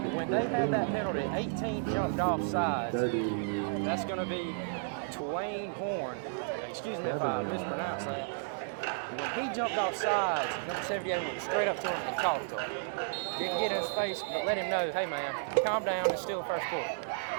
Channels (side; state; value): left; silent; digital silence